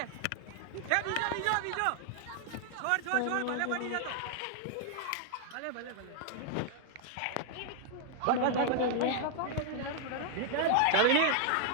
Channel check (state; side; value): different; both; correlation 0.00